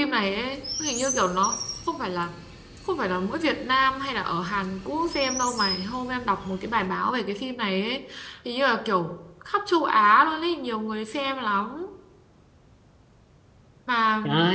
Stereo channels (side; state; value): both; identical; correlation 1.00